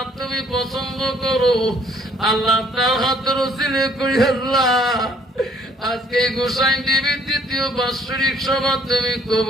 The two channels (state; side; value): normal; both; correlation 0.62